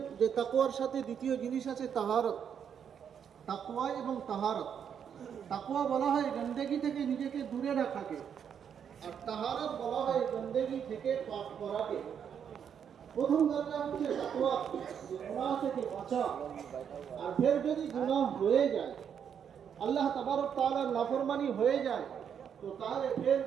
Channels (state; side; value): quieter; left; 8.0 dB